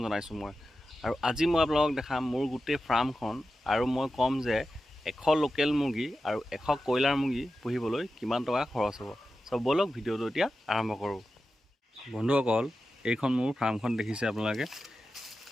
জনাইছোঁ মই। আৰু আজি মই আপোনালোকক দেখাম মোৰ গোটেই ফাৰ্মখন, আৰু মই ক'ম যে 100 লোকেল মুৰ্গী আৰু 100 কয়লাৰ মুৰ্গী পুহিবলৈ কিমান টকা খৰচ হ'ব। চ' ব'লক ভিডিঅ'টো এতিয়া আৰম্ভ কৰোঁ। বন্ধুসকল, এইখন মোৰ ফাৰ্মখন দেখিছে আপোনালোকে।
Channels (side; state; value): both; normal; correlation 0.92